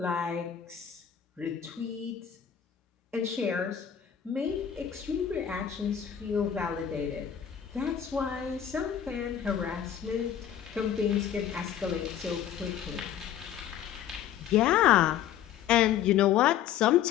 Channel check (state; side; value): quieter; right; 9.7 dB